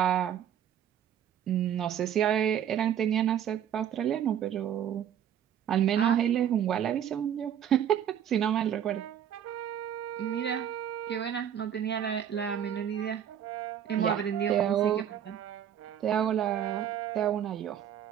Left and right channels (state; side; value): quieter; left; 9.6 dB